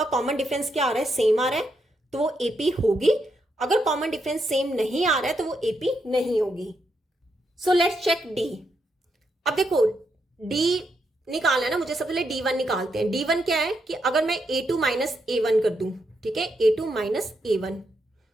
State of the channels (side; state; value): both; normal; correlation 0.80